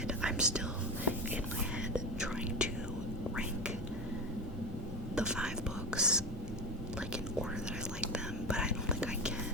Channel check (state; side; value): normal; both; correlation 0.22